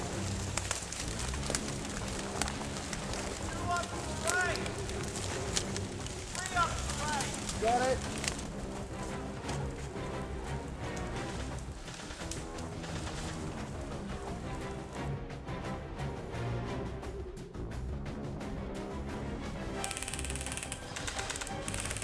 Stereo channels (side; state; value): both; identical; correlation 1.00